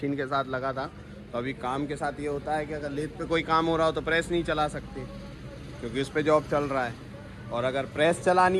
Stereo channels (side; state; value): both; identical; correlation 1.00